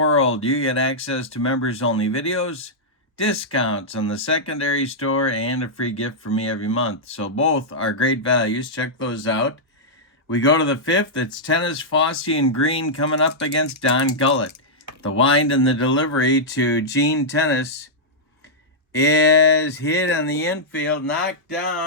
you get access to members-only videos, discounts on the secondary store, and a free gift from me every month. So both are great values. Check those out. We go to the 5th. It's Tennis, Fossey, and Green coming up against Don Gullett. The wind and the delivery to Gene Tennis. is hit in the infield, knocked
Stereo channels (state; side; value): normal; both; correlation -0.09